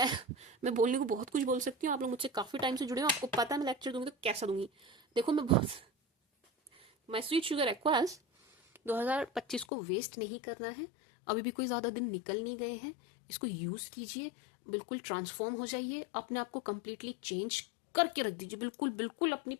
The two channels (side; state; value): right; drops out; at 9.7 s